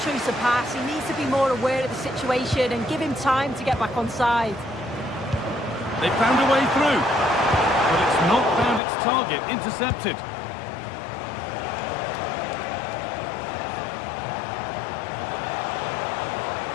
of pass. He needs to be more aware of the situation and give him time to get back on side. They found a way through, but it's not found its target. Intercepted.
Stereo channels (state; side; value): drops out; right; at 8.8 s